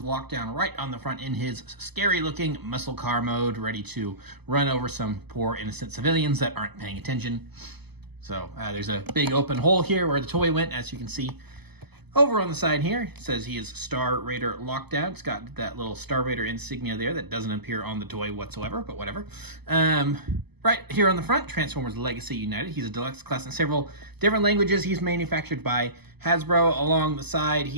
Lockdown right on the front in his scary looking muscle car mode, ready to run over some poor innocent civilians that aren't paying attention. So there's a big open hole here where the toy went, as you can see. Over on the side here, it says he is Star Raider Lockdown. It's got that little Star Raider insignia there that doesn't appear on the toy whatsoever, but whatever. Right here on the front, Transformers Legacy United. He's a deluxe class in several different languages. He's manufactured by Hasbro. Along the side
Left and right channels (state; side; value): late; left; 0.98 ms